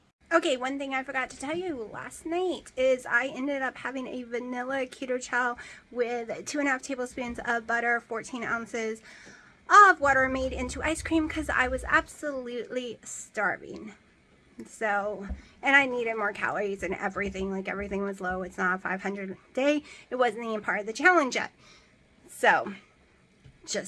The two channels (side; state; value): both; identical; correlation 1.00